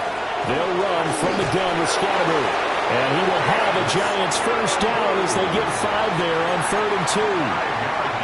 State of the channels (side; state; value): both; identical; correlation 1.00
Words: They'll run from the gun with Scatterby. And he will have a Giants 1st down as they get 5 there on 3rd and 2.